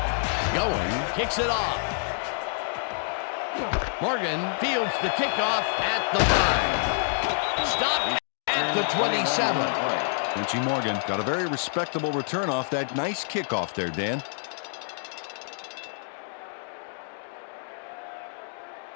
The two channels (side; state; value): right; silent; digital silence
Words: Going, kicks it off. Morgan fields the kickoff at the 5. Stopped at the 27. Quincy Morgan got a very respectable return off that nice kickoff there, Dan.